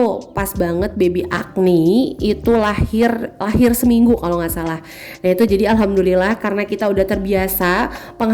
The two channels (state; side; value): identical; both; correlation 1.00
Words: pas banget baby Agni itu lahir seminggu kalau nggak salah. Nah itu jadi alhamdulillah karena kita udah terbiasa